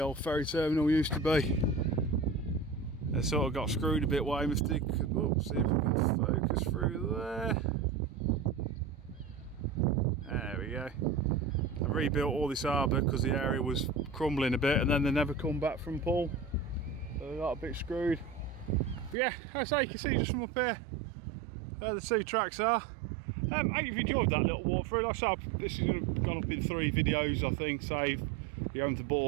old ferry terminal used to be. They sort of got screwed a bit, Weymouth did. Oh, see if we can focus through there. There we go. They rebuilt all this harbour because the area was crumbling a bit, and then they never come back from pull. So they got a bit screwed. But yeah, as I say, you can see just from up here where the 2 tracks are. I hope you've enjoyed that little walk through. Like I said, this is gone up in 3 videos, I think, save you having to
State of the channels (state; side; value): drops out; left; at 19.2 s